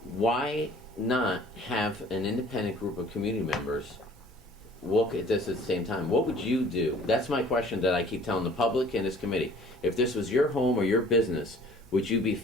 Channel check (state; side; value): normal; both; correlation 0.52